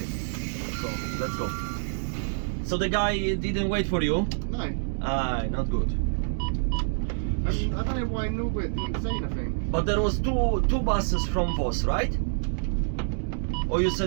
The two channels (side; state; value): left; silent; digital silence